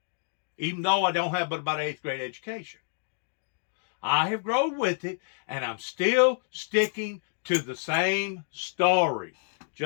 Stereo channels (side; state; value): right; silent; digital silence